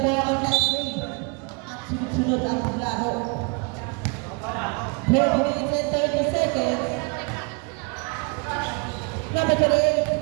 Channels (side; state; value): left; quieter; 31.4 dB